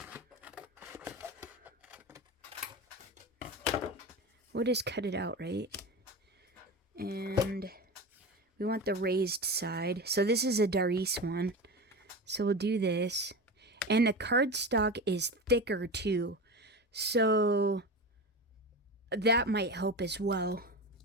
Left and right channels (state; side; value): normal; both; correlation 0.26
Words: We'll just cut it out, right? And... we want the raised side. So this is a Darice one. So we'll do this. And the cardstock is thicker too. So that might help as well.